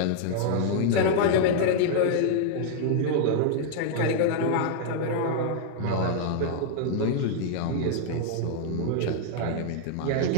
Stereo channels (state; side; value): different; both; correlation -0.01